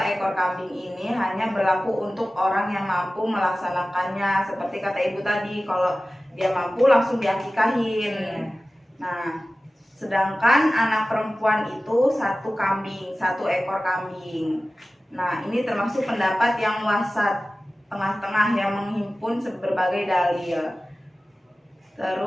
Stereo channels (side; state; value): both; normal; correlation 0.96